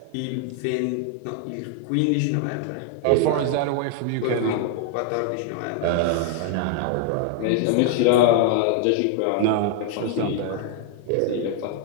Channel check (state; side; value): different; both; correlation 0.00